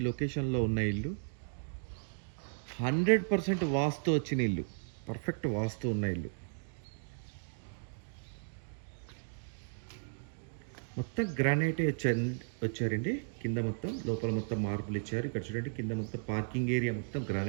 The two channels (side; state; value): left; silent; digital silence